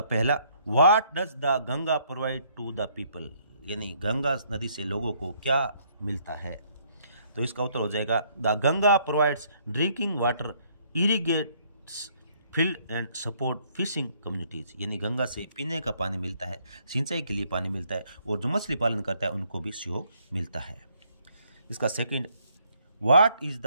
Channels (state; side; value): inverted; both; correlation -0.67